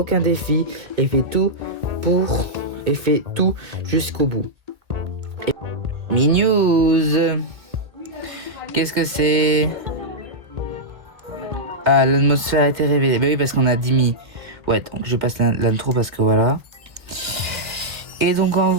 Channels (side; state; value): left; late; 1.8 ms